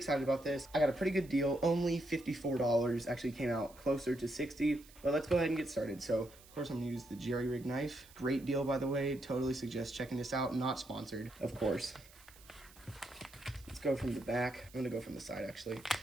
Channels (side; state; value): right; noise; hiss, 23 dB below the sound